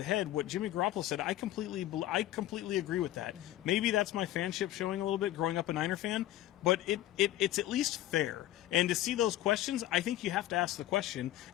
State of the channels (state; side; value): quieter; right; 14.0 dB